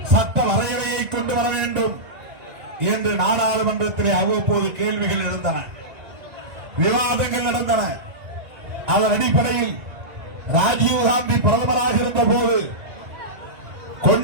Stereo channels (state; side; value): late; left; 1.9 ms